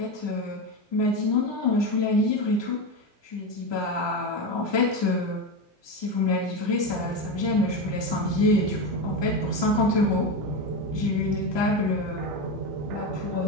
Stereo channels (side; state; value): right; late; 1.2 ms